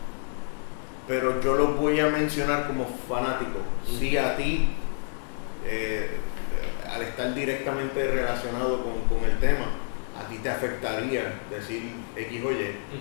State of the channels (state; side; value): silent; right; digital silence